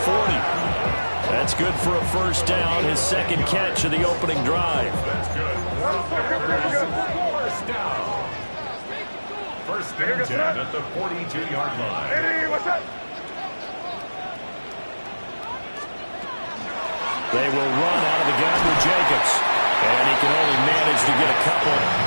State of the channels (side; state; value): both; inverted; correlation -1.00